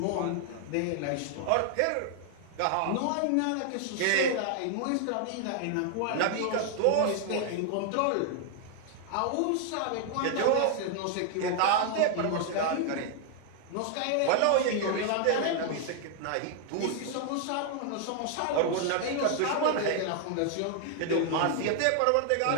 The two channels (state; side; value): different; both; correlation 0.00